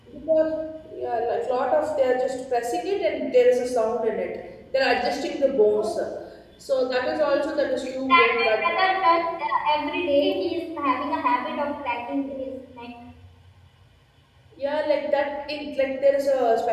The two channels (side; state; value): both; identical; correlation 1.00